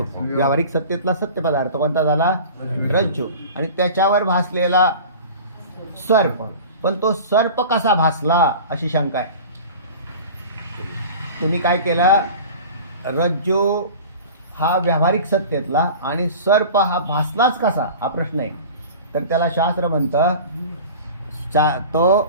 व्यावहारिक सत्तेतला सत्य पदार्थ कोणता झाला? रज्जू. आणि त्याच्यावर भासलेला सर्प. पण तो सर्प कसा भासला अशी शंका आहे. तुम्ही काय केलं? रज्जू हा व्यावहारिक सत्तेतला आणि सर्प हा भासलाच कसा हा प्रश्न आहे. तर त्याला शास्त्र म्हणतं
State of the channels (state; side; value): inverted; both; correlation -0.38